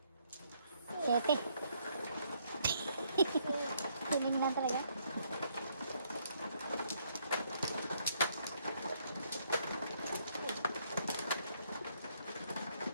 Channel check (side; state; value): both; inverted; correlation -0.70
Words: Sete. Piling lang talaga.